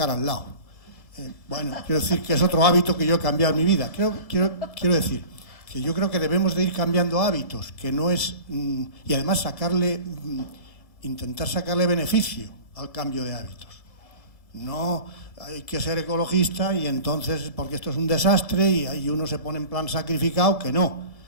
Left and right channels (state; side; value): late; right; 1.7 ms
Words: al lado. Bueno, quiero decir que es otro hábito que yo he cambiado en mi vida. Quiero decir que yo creo que debemos de ir cambiando hábitos, que no es... y además intentar sacarle beneficio al cambio de hábitos. No hay que ser ecologista y entonces, porque esto es un desastre y ahí uno se pone en plan sacrificado, que no,